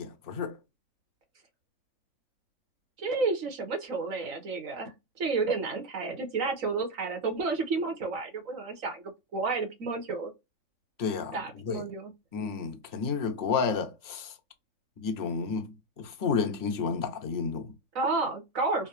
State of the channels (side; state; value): left; late; 3.0 ms